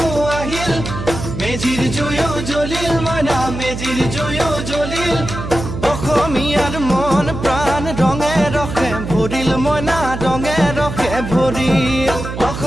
আহিল মেজিৰ জুয়ো জ্বলিল মইনা মেজিৰ জুয়ো জ্বলিল অসমীয়াৰ মন প্ৰাণ ৰঙে ৰখে ভৰিল মইনা ৰঙে ৰখে ভৰিল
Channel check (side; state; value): right; noise; hum, 7 dB below the sound